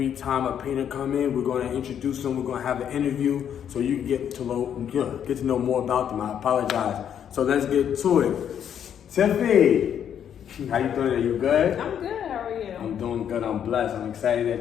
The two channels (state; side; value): quieter; right; 9.0 dB